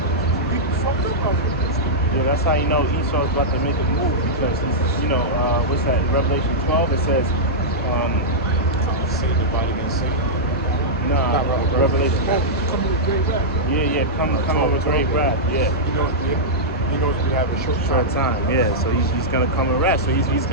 People fucked up out here. Yeah, that's how you know Esau's about to make a move because what's that? In Revelation 12 it says, Satan divided against Satan. Nah, Revelation. Come with great wrath. Yeah, come with great wrath. Yeah. He knows we have a short time. Yeah, so he's gonna come in wrath. So he's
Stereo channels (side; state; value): both; normal; correlation -0.10